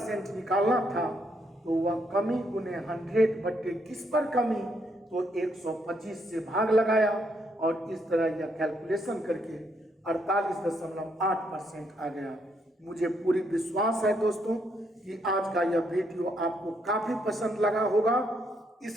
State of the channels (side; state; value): both; normal; correlation 0.74